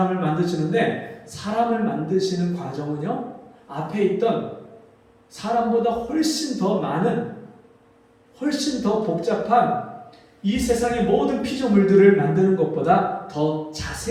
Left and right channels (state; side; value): identical; both; correlation 1.00